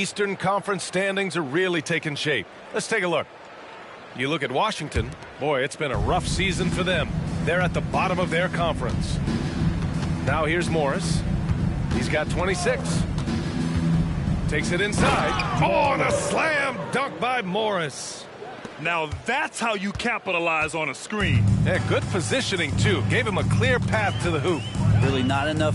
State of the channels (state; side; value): identical; both; correlation 1.00